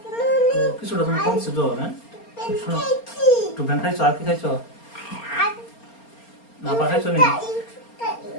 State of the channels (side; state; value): right; late; 4.3 ms